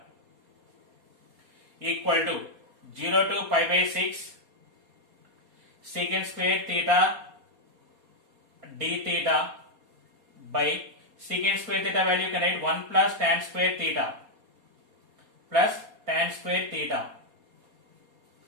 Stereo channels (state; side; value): late; left; 4.2 ms